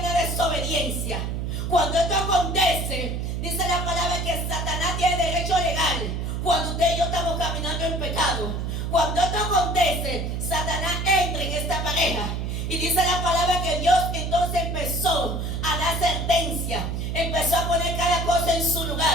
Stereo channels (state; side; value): noise; right; hum, 2 dB below the sound